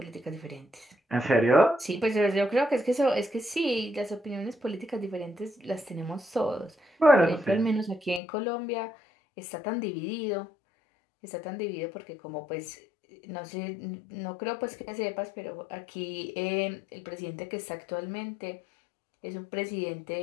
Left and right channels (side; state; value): right; drops out; at 8.2 s